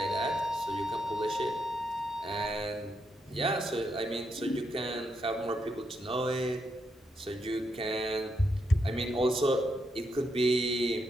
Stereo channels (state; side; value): normal; both; correlation 0.81